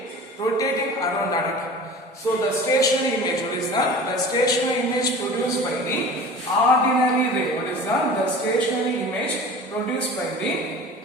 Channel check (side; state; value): both; normal; correlation 0.39